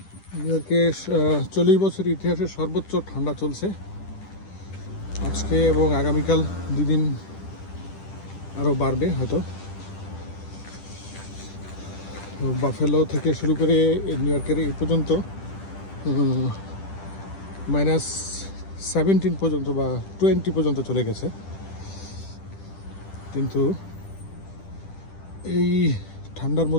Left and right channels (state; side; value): late; right; 10 ms